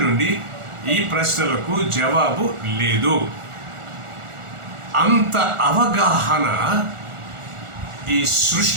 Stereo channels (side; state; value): left; late; 1.4 ms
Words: నుండి ఈ ప్రశ్నలకు జవాబు లేదు. అంత అవగాహన ఈ